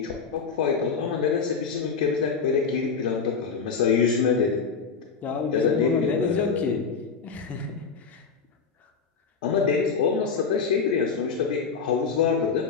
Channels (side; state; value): right; quieter; 5.5 dB